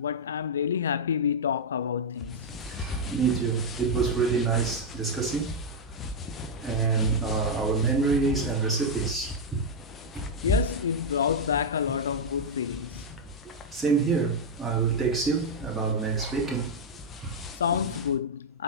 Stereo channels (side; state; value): both; normal; correlation -0.02